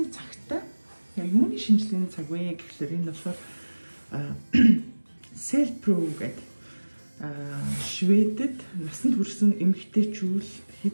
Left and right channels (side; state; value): both; inverted; correlation -1.00